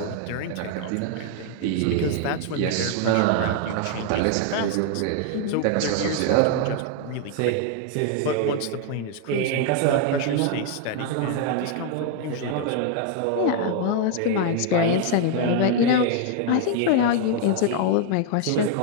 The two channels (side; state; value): both; different; correlation 0.00